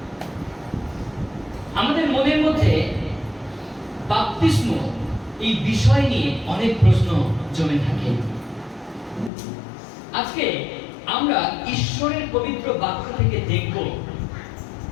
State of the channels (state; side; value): drops out; right; at 9.3 s